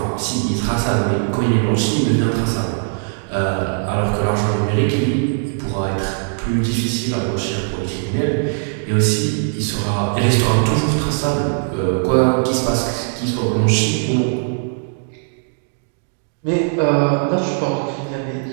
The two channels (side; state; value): left; silent; 66 dB below the other